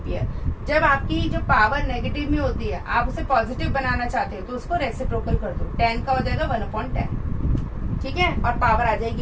जब आपकी जो पावर नेगेटिव में होती है, आप उसे पॉजिटिव बनाना चाहते हो तो उसको रेसिप्रोकल कर दो, 10 का हो जाएगा 1/10, ठीक है, और पावर आ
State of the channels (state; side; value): identical; both; correlation 1.00